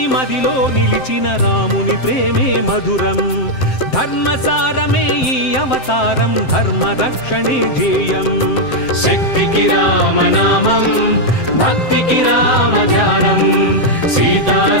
మదిలో నిలిచిన రాముని ప్రేమే మధురం ధర్మసారమే ఈ అవతారం ధర్మరక్షణే ధ్యేయం శక్తికి రామనామం భక్తికి రామ ధ్యానం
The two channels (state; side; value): late; right; 7.7 ms